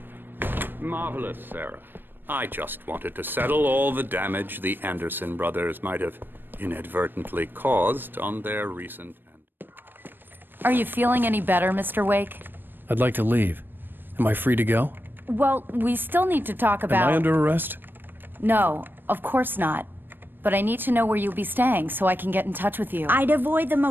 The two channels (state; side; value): late; left; 0.095 ms